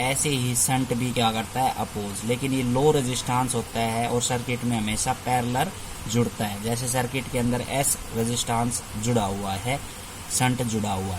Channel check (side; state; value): both; identical; correlation 1.00